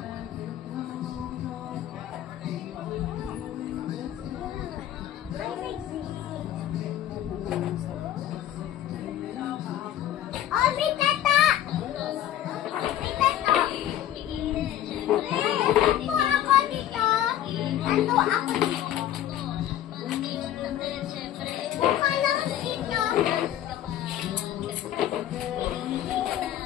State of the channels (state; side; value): quieter; right; 11.8 dB